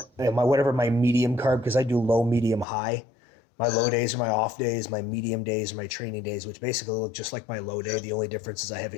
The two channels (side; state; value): right; drops out; at 2.7 s